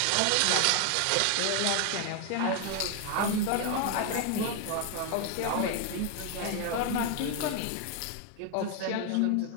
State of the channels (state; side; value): different; both; correlation 0.01